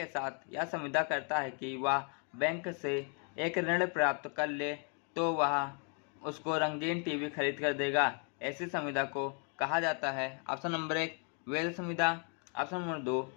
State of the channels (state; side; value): quieter; right; 38.8 dB